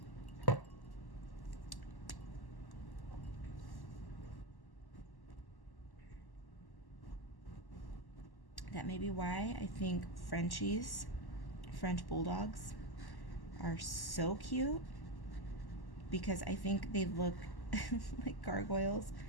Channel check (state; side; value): late; right; 1.1 ms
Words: That may be why I think Frenchies, French bulldogs, are so cute, because I think they look like gargoyles.